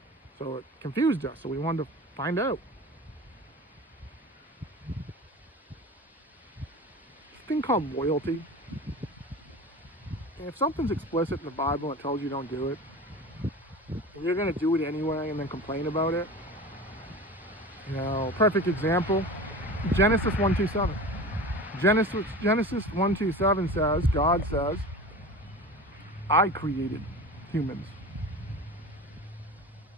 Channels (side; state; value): both; normal; correlation 0.34